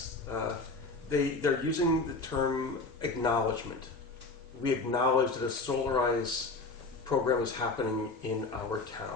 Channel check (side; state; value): right; quieter; 3.5 dB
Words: They're using the term acknowledgement. We acknowledge that a Solarize program is happening in our